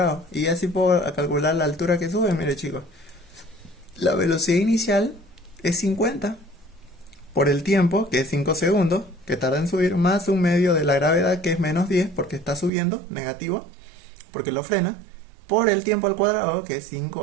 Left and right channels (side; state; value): left; drops out; at 12.7 s